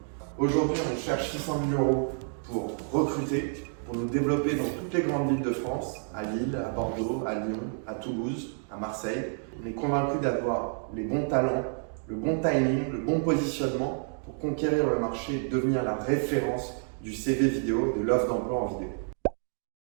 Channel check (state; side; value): silent; left; 58 dB below the other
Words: Aujourd'hui, on cherche 600 000 € pour recruter, pour nous développer dans toutes les grandes villes de France, à Lille, à Bordeaux, à Lyon, à Toulouse, à Marseille. On est convaincu d'avoir les bons talents, le bon timing, le bon positionnement pour conquérir le marché et devenir la référence du CV vidéo, de l'offre d'emploi en vidéo.